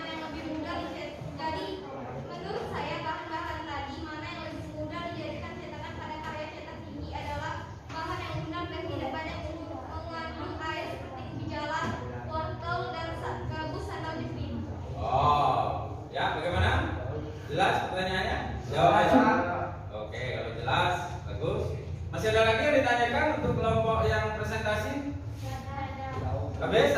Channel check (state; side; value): identical; both; correlation 1.00